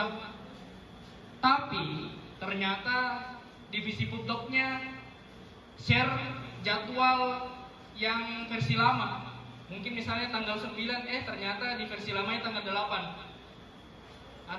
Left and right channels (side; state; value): both; identical; correlation 1.00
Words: Tapi ternyata divisi pupdoknya share jadwal yang versi lama. Mungkin misalnya tanggal 9, ternyata di versi lamanya tanggal 8.